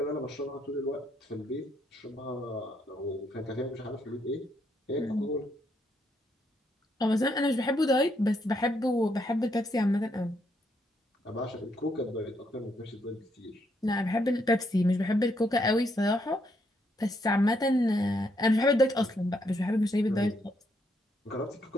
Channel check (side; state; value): both; normal; correlation 0.75